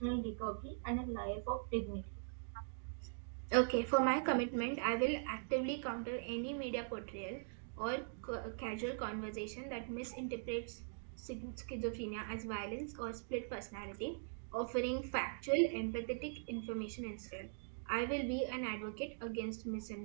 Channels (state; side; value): silent; left; digital silence